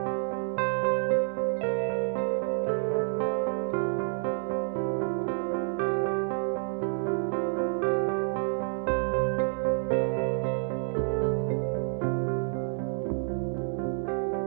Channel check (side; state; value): left; silent; 59 dB below the other